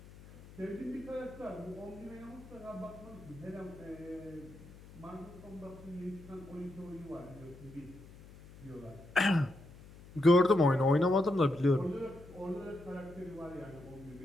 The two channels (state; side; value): noise; left; hum, 19 dB below the sound